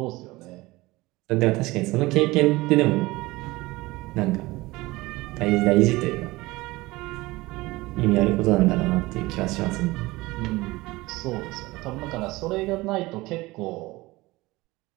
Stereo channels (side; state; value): left; quieter; 20.6 dB